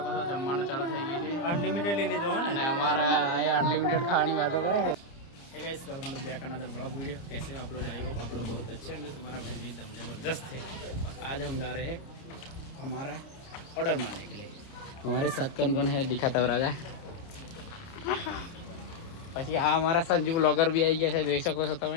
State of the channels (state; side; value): late; right; 30 ms